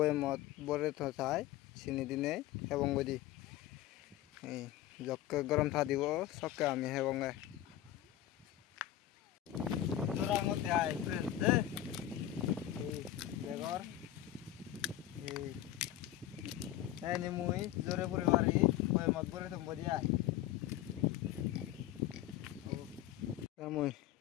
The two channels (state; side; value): quieter; right; 13.2 dB